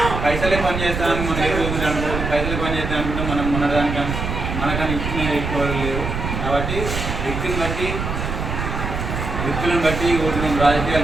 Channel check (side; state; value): right; noise; rumble, 4 dB below the sound